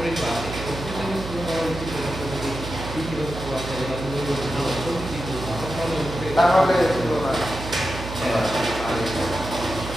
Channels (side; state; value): right; noise; hum, 8 dB below the sound